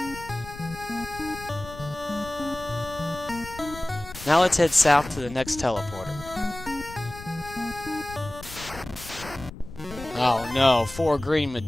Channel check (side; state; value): left; noise; rumble, 15 dB below the sound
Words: Now let's head south to the next teleporter. Oh no, 4 green